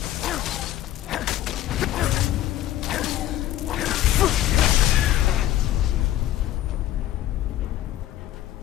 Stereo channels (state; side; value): quieter; right; 13.1 dB